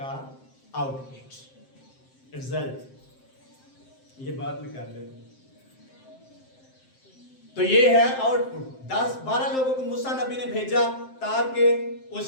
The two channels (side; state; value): right; late; 7.6 ms